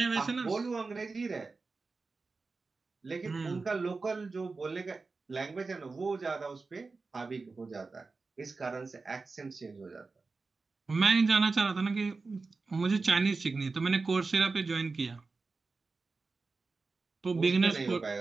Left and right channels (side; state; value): left; quieter; 4.1 dB